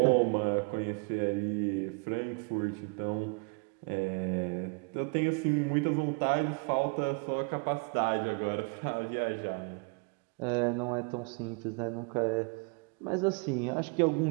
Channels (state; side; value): quieter; left; 35.1 dB